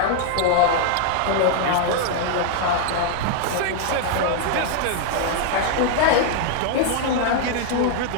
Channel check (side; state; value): both; different; correlation 0.00